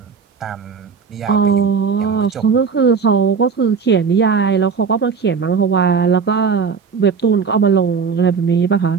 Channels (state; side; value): quieter; left; 5.7 dB